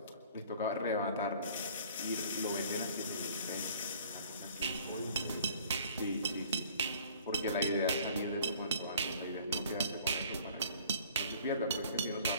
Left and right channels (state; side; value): inverted; both; correlation -0.52